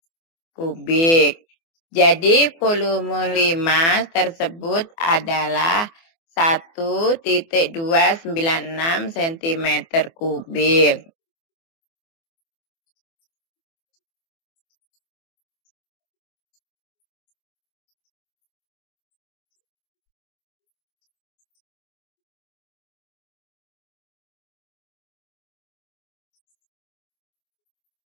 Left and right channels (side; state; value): right; late; 24 ms